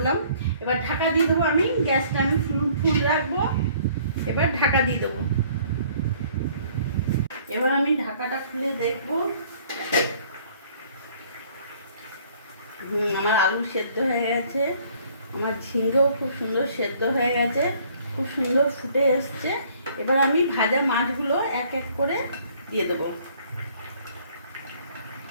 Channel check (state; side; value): inverted; both; correlation -0.58